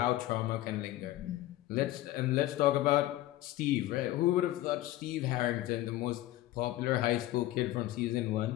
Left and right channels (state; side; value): quieter; right; 15.5 dB